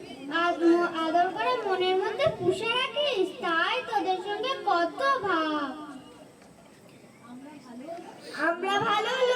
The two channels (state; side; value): identical; both; correlation 1.00